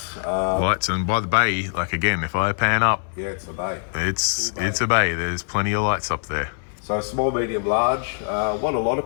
Lights, and by the bay, like again, if I pan up, it's a bay. It's a bay. There's plenty of lights up there. So small, medium, large. What a lot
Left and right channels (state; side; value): silent; right; 63 dB below the other